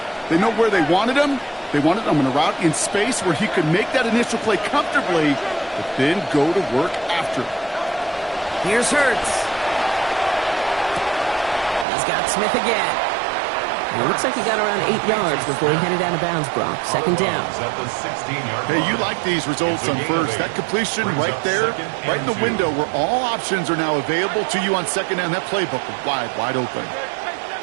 They know where they wanted them. They wanted them in a route in space where he could make that initial play comfortably, but then go to work after it. Here's Hurts. He's got Smith again. And it looks like he got around 8 yards before he headed out of bounds, Brock. 2nd down. Hey, you like these results on 1st. That completion right there, right in the window where all options are now available to you on 2nd down. That playbook is wide open.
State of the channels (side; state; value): left; drops out; at 11.9 s